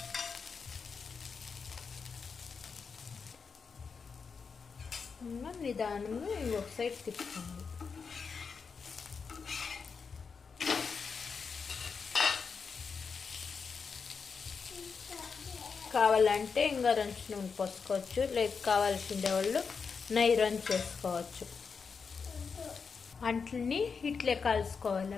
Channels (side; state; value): right; quieter; 5.5 dB